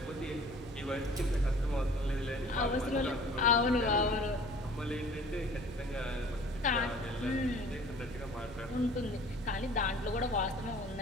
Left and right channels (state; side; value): normal; both; correlation 0.49